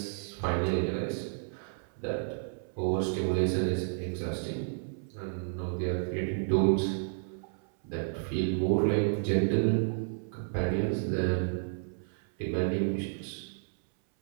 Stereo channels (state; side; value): silent; left; 57 dB below the other